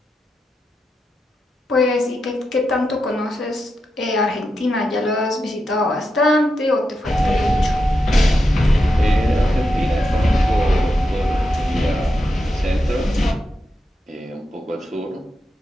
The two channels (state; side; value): normal; both; correlation 0.87